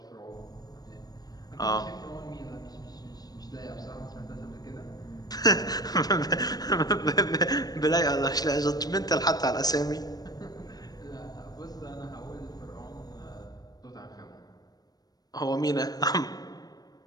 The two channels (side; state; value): right; late; 0.19 ms